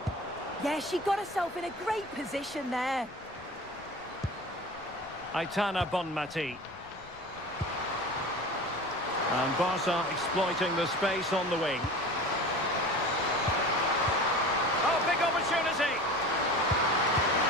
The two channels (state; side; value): noise; left; rumble, 24 dB below the sound